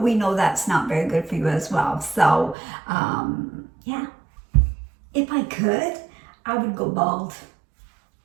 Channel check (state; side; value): drops out; left; at 2.6 s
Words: we know that's not very good for you as well. So yeah. If I could, I would go bald.